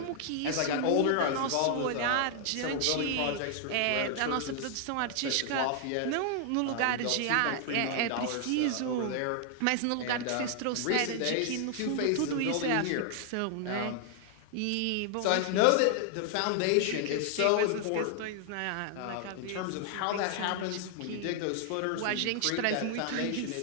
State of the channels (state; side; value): different; both; correlation 0.00